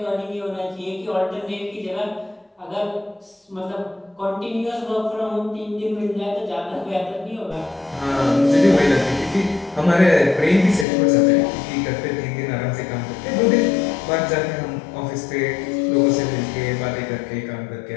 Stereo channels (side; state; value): right; drops out; at 10.9 s